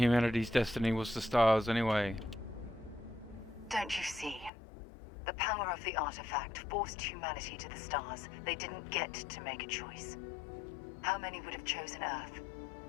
destiny was the stars anyway. Don't you see? The power of the artifact forced humanity to the stars. They didn't get to make a choice. How many would have chosen Earth?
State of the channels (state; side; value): drops out; right; at 4.5 s